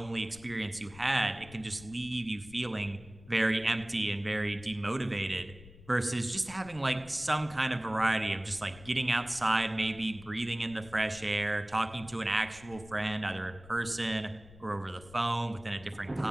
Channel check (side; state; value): left; noise; rumble, 19 dB below the sound